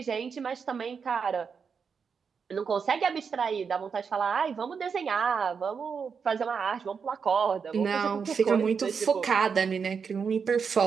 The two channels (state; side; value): quieter; left; 6.0 dB